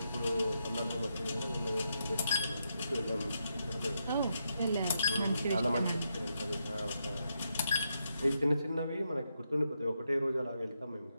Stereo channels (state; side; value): inverted; both; correlation -0.82